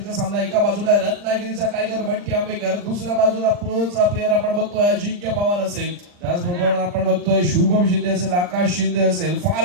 सामना. एका बाजूला रत्नागिरीचा टायगर बंटी आंबेकर, दुसऱ्या बाजूला प्रोचा प्लेअर आपण बघतोय अजिंक्य पवार असेल, त्याचबरोबर आपण बघतोय शुभम शिंदे असेल, आकाश शिंदे असेल.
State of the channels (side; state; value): left; late; 39 ms